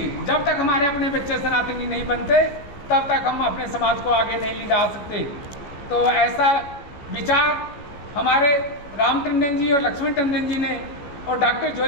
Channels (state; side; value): late; right; 14 ms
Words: जब तक हमारे अपने बच्चे सनातनी नहीं बनते तब तक हम अपने समाज को आगे नहीं ले जा सकते। तो ऐसा विचार हमारे राम टंडन जी और लक्ष्मण टंडन जी ने और डॉक्टर